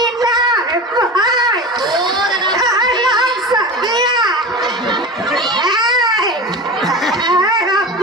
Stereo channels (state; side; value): normal; both; correlation 0.30